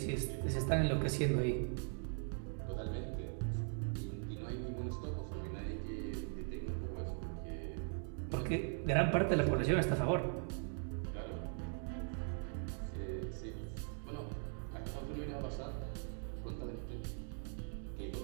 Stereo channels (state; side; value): silent; left; 51 dB below the other